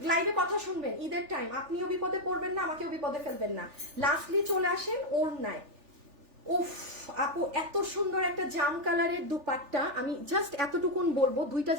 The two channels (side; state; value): left; late; 3.4 ms